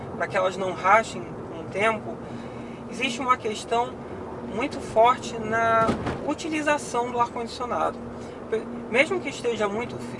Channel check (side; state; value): both; identical; correlation 1.00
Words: para que elas não rachem com o tempo, existe uma questão muito forte na utilização do ar-condicionado. Mesmo que esteja muito